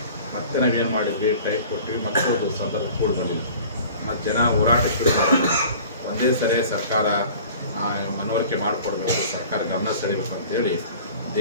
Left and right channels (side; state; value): both; inverted; correlation -0.45